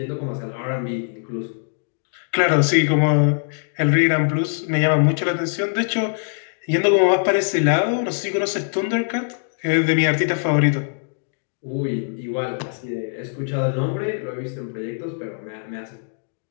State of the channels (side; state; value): right; silent; digital silence